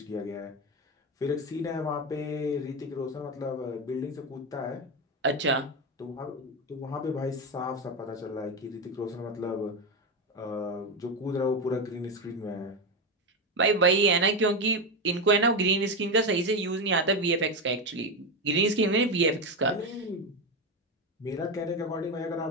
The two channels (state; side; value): normal; both; correlation 0.14